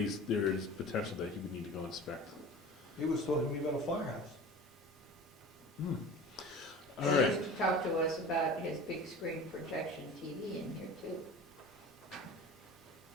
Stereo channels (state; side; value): normal; both; correlation 0.38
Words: potential that he would need to go inspect. He was talking to me about a firehouse. All He right, used to talk to us about his big screen projection TV in here too.